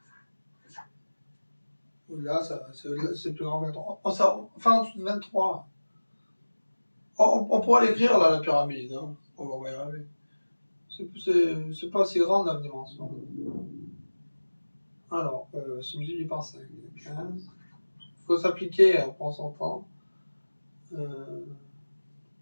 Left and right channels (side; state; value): both; inverted; correlation -1.00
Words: Là, c'est plus grand que 23. Enfin, en dessous de 23. On pourra l'écrire, là, la pyramide. Hein. On va y arriver. C'est pas assez grande, la dimension. Alors, c'est multiplié par 5. 15. Il faut s'appliquer, on prend son temps. Le